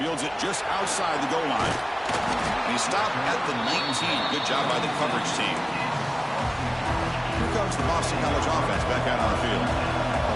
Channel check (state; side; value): identical; both; correlation 1.00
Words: it just outside the goal line. And he stopped at the 19. Good job by the coverage team. Here comes the Boston College offense back out on the field.